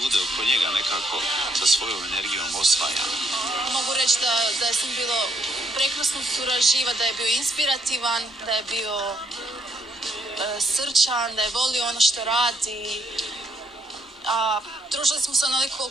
oko njega nekako sa svojom energijom osvaja. Mogu reći da je sam bilo prekrasno surađiva, da je bio inspirativan, da je bio srčan, da je volio ono što radi. A družili smo se onoliko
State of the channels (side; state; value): both; normal; correlation 0.72